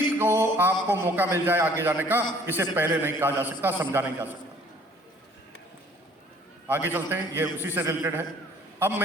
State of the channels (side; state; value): both; normal; correlation 0.56